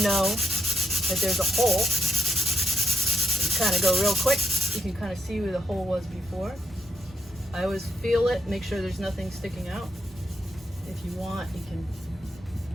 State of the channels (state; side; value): normal; both; correlation 0.80